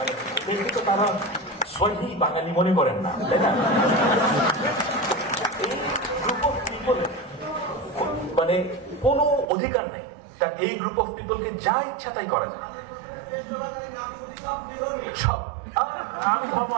দেখি তো তারা সহি বাঙালি মনে করেন না, তাই না? এই গ্রুপ অফ পিপলের মানে কোনো অধিকার নেই, তার এই গ্রুপ অফ পিপলকে যা ইচ্ছা তাই করা যায়। সব আমি ধর্ম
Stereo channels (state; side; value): drops out; left; at 9.5 s